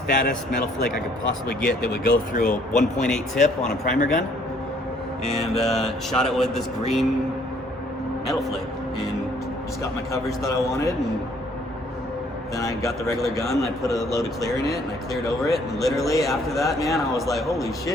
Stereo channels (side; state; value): both; normal; correlation 0.62